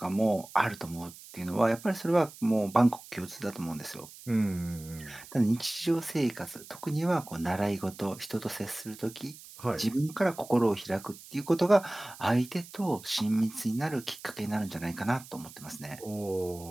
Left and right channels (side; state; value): right; noise; hiss, 18 dB below the sound